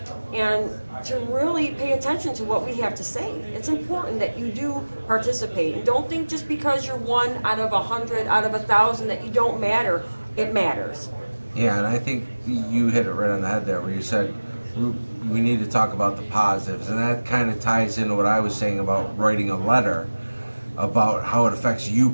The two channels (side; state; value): both; inverted; correlation -1.00